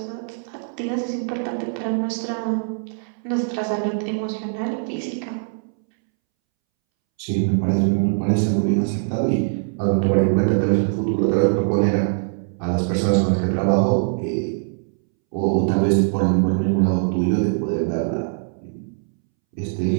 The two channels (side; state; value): left; silent; 64 dB below the other